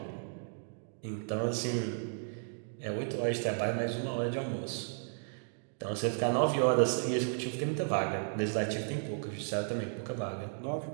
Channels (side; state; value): left; silent; digital silence